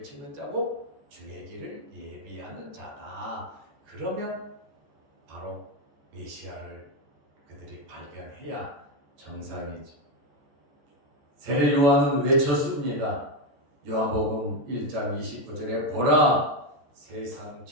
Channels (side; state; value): left; late; 14 ms